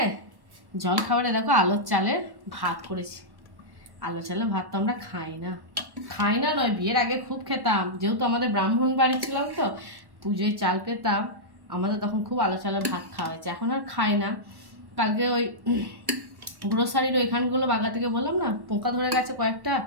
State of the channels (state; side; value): late; left; 1.1 ms